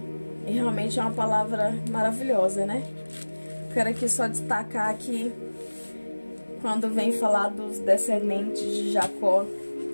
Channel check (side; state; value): both; inverted; correlation -1.00